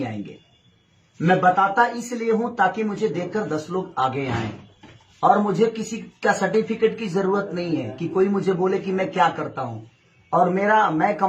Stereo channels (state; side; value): identical; both; correlation 1.00